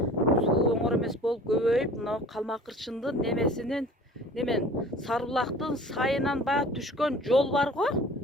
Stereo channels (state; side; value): normal; both; correlation 0.45